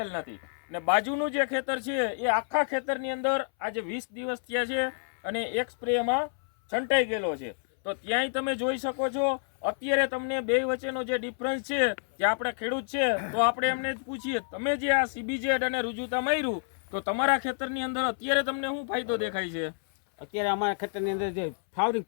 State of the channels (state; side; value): silent; right; 59 dB below the other